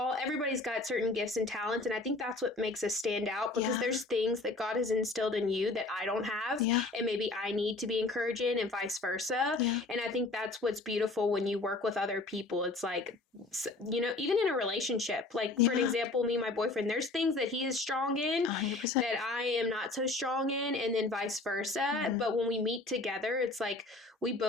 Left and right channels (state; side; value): quieter; right; 3.2 dB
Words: everybody's got certain gifts and talents. And I think that's what makes us stand out, because there's things that God has instilled in you that I don't have. And maybe I need to be encouraged in, and vice versa. And I think that's what's beautiful when you work with other people. It's like even in a relationship, like for an example, me and my boyfriend, there's things that he is strong in 100%. that I am not so strong in, and then vice versa. But when we meet together, it's like we